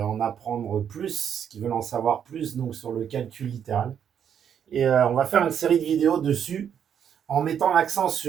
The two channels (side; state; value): left; quieter; 8.5 dB